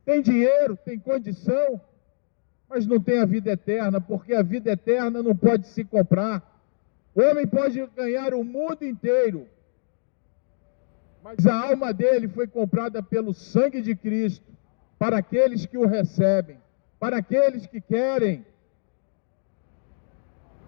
têm dinheiro, têm condição, mas não tem a vida eterna, porque a vida eterna não pode se comprar. O homem pode ganhar o mundo inteiro, mas a alma dele foi comprada pelo sangue de Cristo, para aqueles que o recebem, para aqueles que querem.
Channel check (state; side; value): silent; right; 62 dB below the other